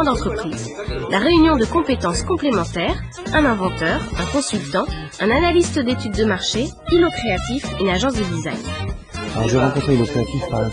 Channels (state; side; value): identical; both; correlation 1.00